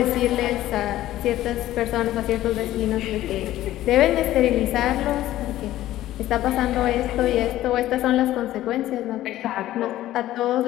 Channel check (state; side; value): quieter; right; 14.3 dB